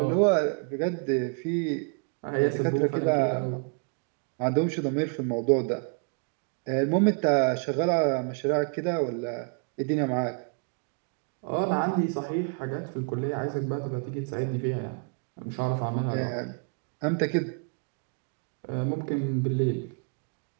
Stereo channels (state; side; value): quieter; left; 39.4 dB